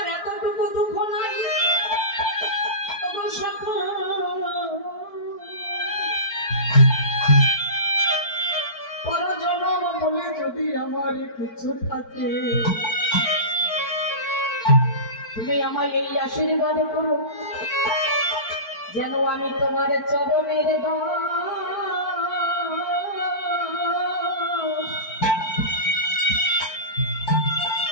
এতটুকু দুঃখ নাই। ওগো সখা, পরজনম বলে যদি আমার কিছু থাকে, তুমি আমায় এই আশীর্বাদ করো, যেন আমি তোমার চরণের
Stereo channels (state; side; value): late; right; 4.5 ms